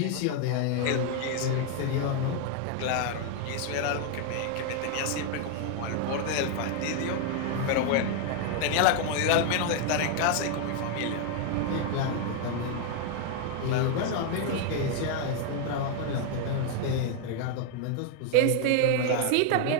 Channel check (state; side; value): different; both; correlation 0.00